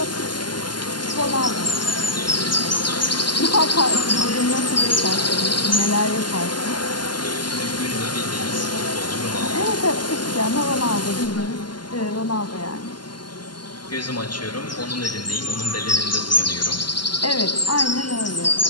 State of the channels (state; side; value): late; right; 0.71 ms